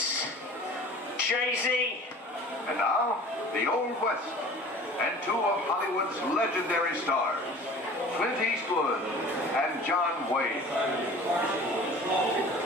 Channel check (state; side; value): normal; both; correlation 0.43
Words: Jay-Z. And now, the Old West, and two of Hollywood's legendary stars, Clint Eastwood and John Wayne.